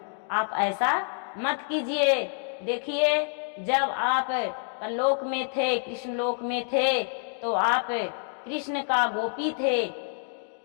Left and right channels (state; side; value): silent; right; 60 dB below the other